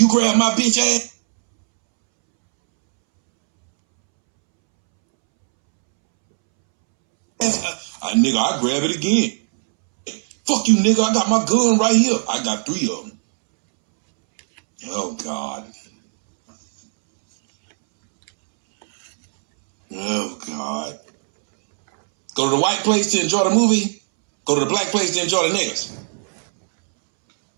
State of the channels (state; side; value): silent; left; 67 dB below the other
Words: grab my bitch ass. Nigga, I grab it again. Fuck you, nigga. I got my gun right here. I got 3 of them. Oh, God. Oh, God. Go to the white place to enjoy the movie. Go to the black place to enjoy the niggas.